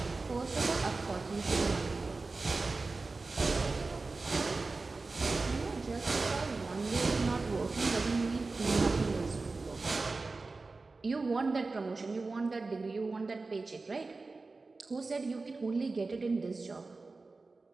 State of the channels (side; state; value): left; quieter; 3.7 dB